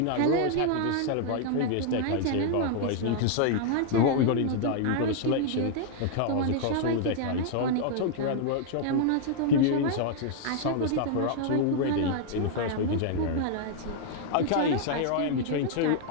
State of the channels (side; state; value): both; different; correlation 0.00